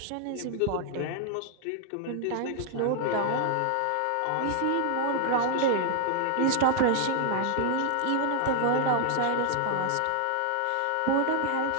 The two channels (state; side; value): different; both; correlation 0.00